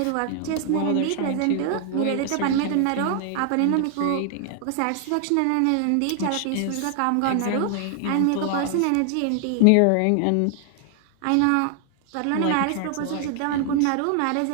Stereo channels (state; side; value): different; both; correlation 0.00